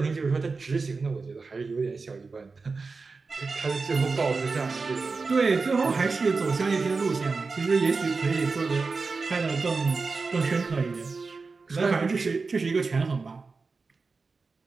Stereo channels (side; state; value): left; quieter; 4.3 dB